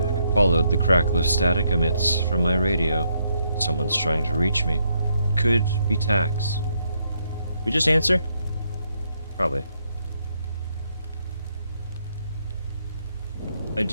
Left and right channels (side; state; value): both; inverted; correlation -0.76